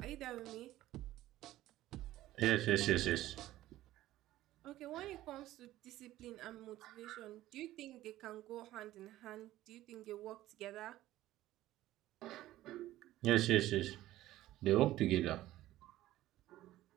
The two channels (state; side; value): quieter; left; 15.1 dB